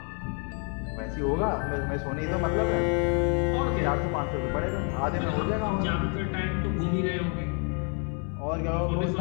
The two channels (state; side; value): quieter; right; 38.9 dB